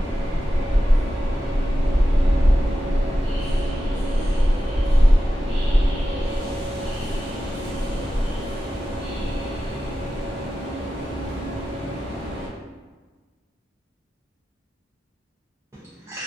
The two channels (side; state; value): both; normal; correlation 0.92